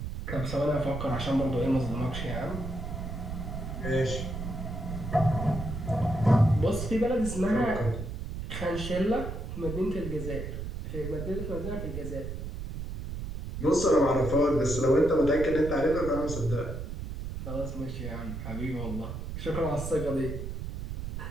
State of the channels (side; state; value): right; noise; rumble, 6 dB below the sound